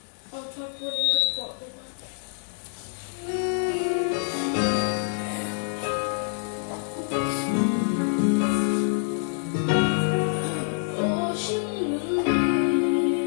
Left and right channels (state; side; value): silent; right; 61 dB below the other